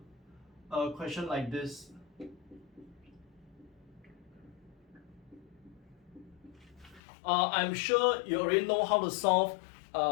a question like this? I'm sure you already know how to solve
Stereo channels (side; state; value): right; drops out; at 7.0 s